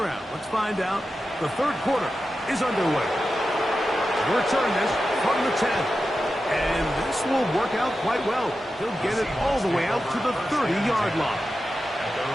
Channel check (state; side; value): normal; both; correlation 0.91